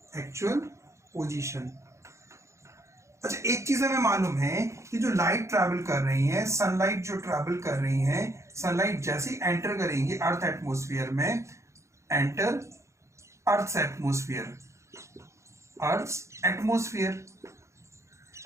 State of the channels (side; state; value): left; late; 0.14 ms